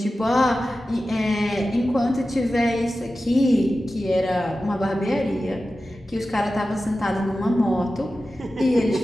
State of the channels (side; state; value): both; normal; correlation 0.94